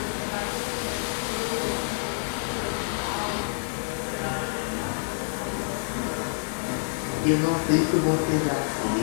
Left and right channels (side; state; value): right; silent; 60 dB below the other